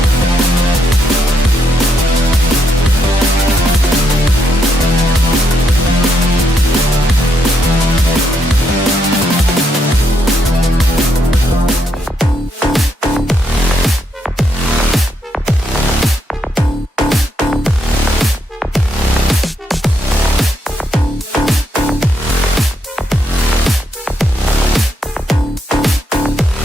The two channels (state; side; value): normal; both; correlation 0.78